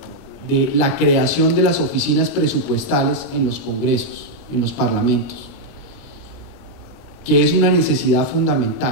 de la creación de las oficinas presupuestales en los congresos, en los parlamentos, que es una necesidad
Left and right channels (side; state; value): right; late; 29 ms